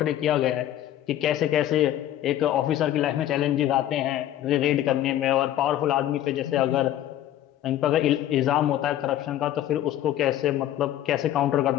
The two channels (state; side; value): quieter; right; 12.5 dB